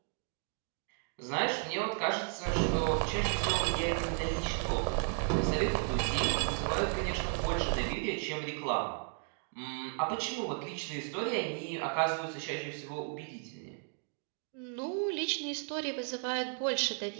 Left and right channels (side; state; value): left; silent; 55 dB below the other